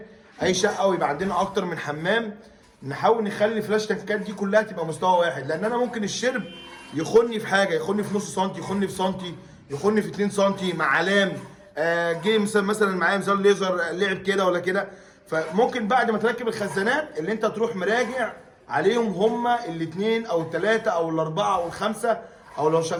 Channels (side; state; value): both; identical; correlation 1.00